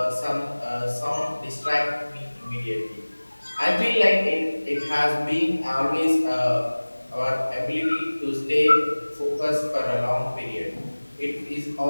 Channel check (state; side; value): inverted; both; correlation -1.00